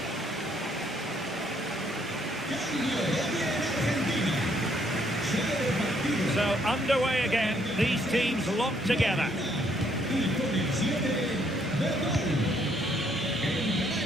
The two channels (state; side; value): normal; both; correlation 0.69